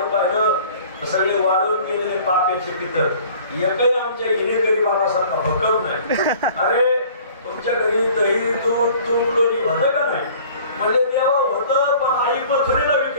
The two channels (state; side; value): inverted; both; correlation -0.50